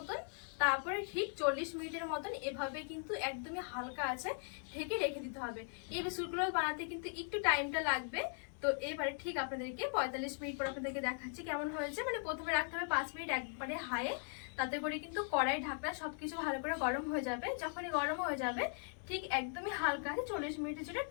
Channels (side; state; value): right; silent; 52 dB below the other